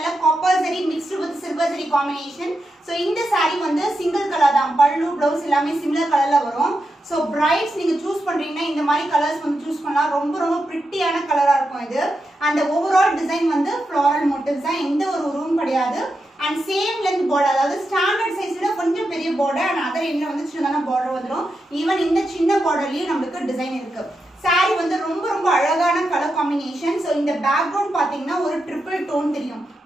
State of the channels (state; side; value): normal; both; correlation 0.87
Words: copper zari mixed with silver zari combination. So இந்த saree வந்து சிங்கிள் கலர் தான். பல்லு ப்ளவுஸ் எல்லாமே சிமிலர் கலர்ல வரும். ஸோ பிரைட்ஸ் நீங்க சூஸ் பண்றீங்கன்னா இந்த மாதிரி கலர்ஸ் வந்து சூஸ் பண்ணலாம். ரொம்ப பிரிட்டியான கலரா இருக்கும் இது. அந்த ஓவரால் டிசைன் வந்து ஃப்ளாரல் மோட்டிவ்ஸ் தான், எந்த ஒரு உருவம் கிடையாது. அண்ட் சேம் லென்த் பார்டர், அதாவது ஸ்டாண்டர்ட் சைஸ் விட கொஞ்சம் பெரிய பார்டர் அண்ட் அதர் எண்ட்ல வந்து சின்னதான பார்டர் வந்துடும். ஈவன் இந்த சின்ன பார்டர்லயும் நம்மளுக்கு டிசைன் இருக்கு. சாரி வந்து ரொம்ப அழகான கலர் காம்பினேஷன். ஸோ இந்த பேக்ரவுண்ட் பாத்தீங்கன்னா ஒரு ட்ரிபிள் டோன் தெரியும்.